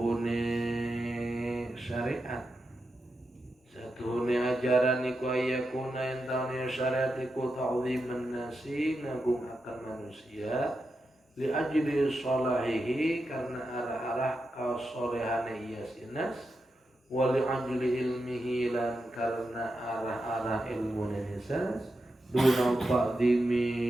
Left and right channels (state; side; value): normal; both; correlation 0.88